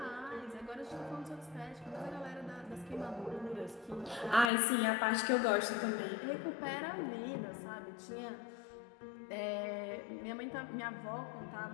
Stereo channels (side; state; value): right; drops out; at 4.5 s